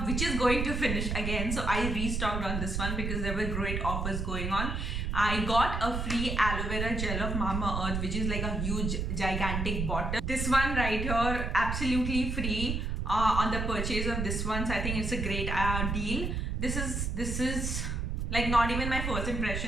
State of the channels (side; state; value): right; noise; rumble, 1 dB below the sound